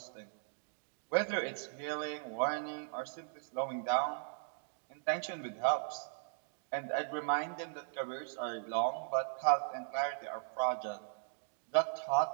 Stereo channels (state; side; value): silent; left; digital silence